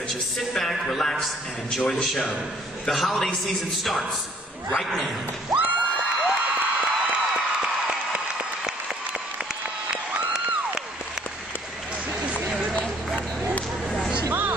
you sit back, relax, and enjoy the show. The holiday season starts right now.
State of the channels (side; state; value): both; normal; correlation 0.60